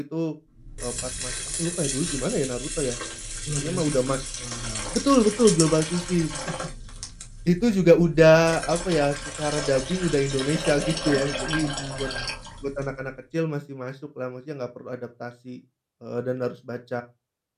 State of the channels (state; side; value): identical; both; correlation 1.00